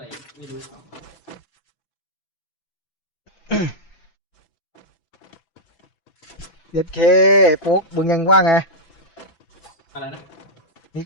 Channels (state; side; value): late; right; 6.0 ms